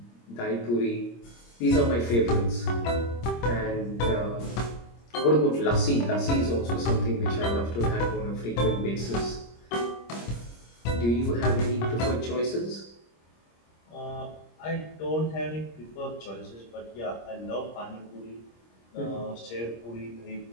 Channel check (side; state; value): right; late; 26 ms